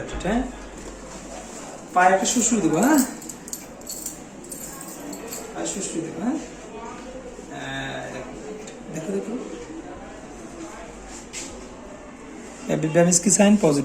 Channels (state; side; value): identical; both; correlation 1.00